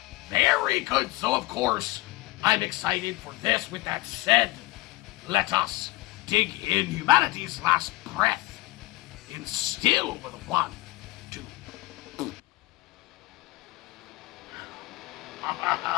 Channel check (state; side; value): quieter; right; 20.2 dB